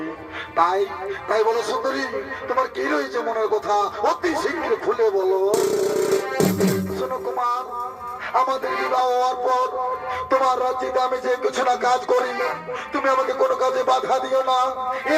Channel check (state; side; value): identical; both; correlation 1.00